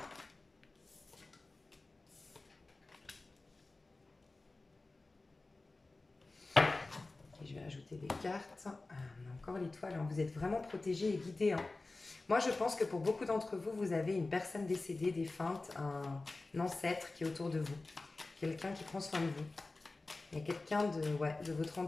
Okay, je vais rajouter des cartes. On a encore l'étoile. Vous êtes vraiment protégés et guidés. Moi, je pense que pour beaucoup d'entre vous, vous avez une personne décédée, défunte, un ancêtre qui est autour de vous. Quelqu'un qui prend soin de vous. Il y a quelqu'un de votre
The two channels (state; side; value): quieter; right; 3.3 dB